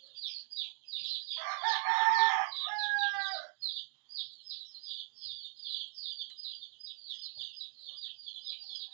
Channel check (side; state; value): left; silent; 52 dB below the other